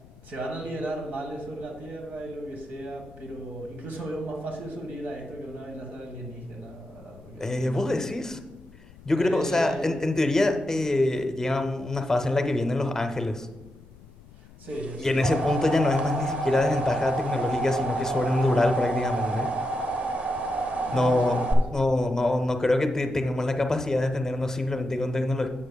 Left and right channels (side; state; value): left; noise; rumble, 23 dB below the sound